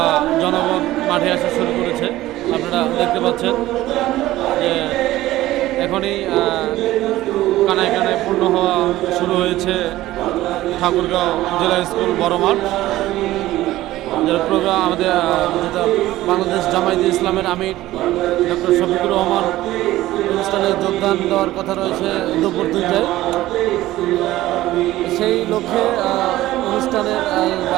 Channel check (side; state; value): left; quieter; 15.9 dB